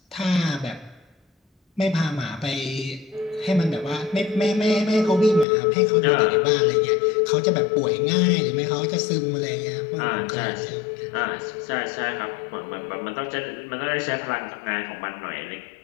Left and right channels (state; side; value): drops out; right; at 5.5 s